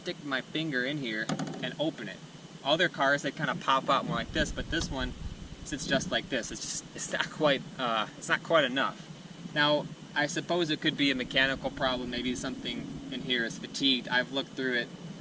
my finger in here and open it. Other cars, they kind of pop out more like this, but this one sits just like this. It's not quite enough. Now, I suppose it could be a mechanical problem. Maybe something in here is fatigued. I've looked through it.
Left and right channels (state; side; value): identical; both; correlation 1.00